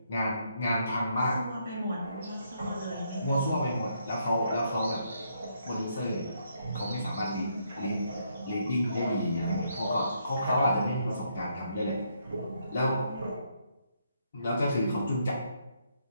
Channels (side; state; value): both; inverted; correlation -0.74